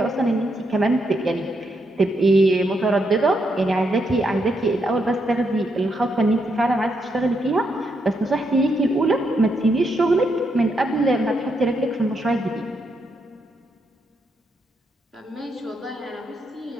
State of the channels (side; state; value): both; normal; correlation 0.79